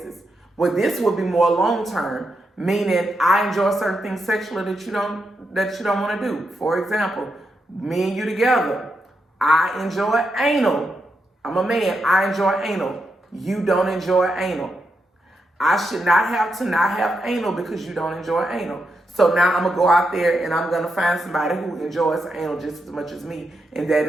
Well, this would be more long-term, meaning I enjoy certain things sexually that you don't want to do. For example, me and you together, I enjoy anal. I'm a man, I enjoy anal. You don't enjoy anal. I should not have to not have anal because you don't enjoy anal. So now I'm going to go out there and I'm going to find somebody who enjoys anal just as much as me, and that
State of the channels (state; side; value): normal; both; correlation 0.84